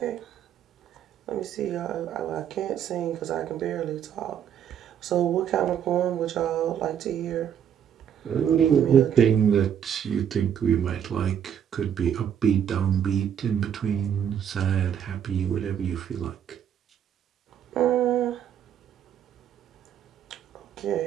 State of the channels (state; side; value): quieter; left; 9.0 dB